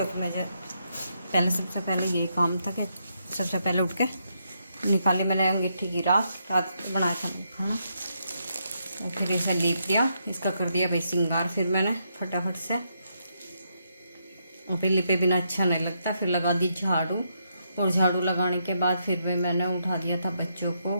मुझे पहले सबसे पहले यही काम था कि सबसे पहले उठ के निकाली मैंने अंगीठी की राख। रात बनाया था मैं खाना, और फिर इसे लीप दिया, इसका कर दिया भाई श्रृंगार। फिर मैंने फटाफट से, और फिर लिपे बिना अच्छा नहीं लगता, फिर लगा दी झाड़ू। और झाड़ू लगाने के बाद फिर भी मैंने उठा दिया था बच्चों को।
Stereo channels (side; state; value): both; inverted; correlation -0.79